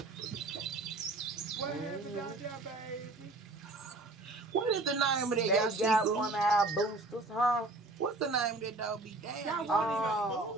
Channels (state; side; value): quieter; left; 3.1 dB